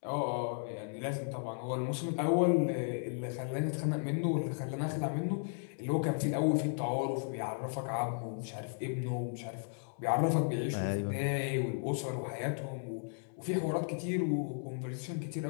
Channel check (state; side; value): silent; right; digital silence